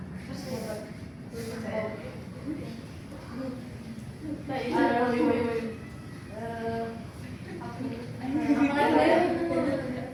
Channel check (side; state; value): both; identical; correlation 1.00